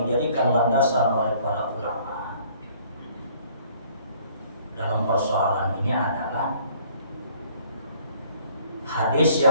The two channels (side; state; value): both; inverted; correlation -0.58